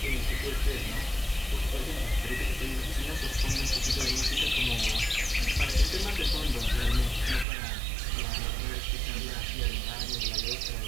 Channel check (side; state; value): left; drops out; at 7.5 s